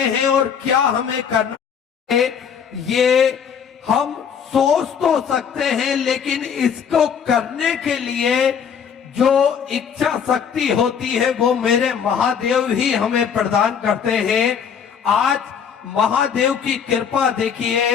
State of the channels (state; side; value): quieter; right; 7.3 dB